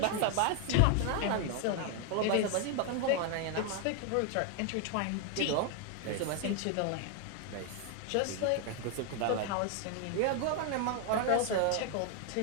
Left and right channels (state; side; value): different; both; correlation 0.00